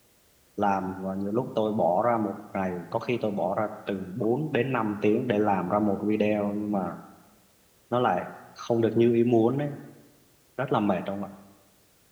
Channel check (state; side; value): identical; both; correlation 1.00